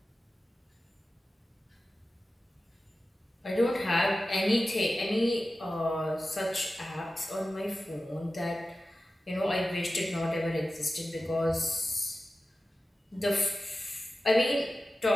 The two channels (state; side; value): normal; both; correlation 0.94